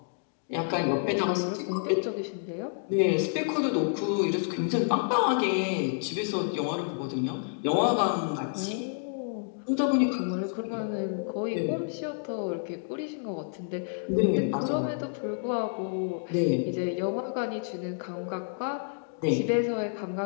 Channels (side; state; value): right; silent; digital silence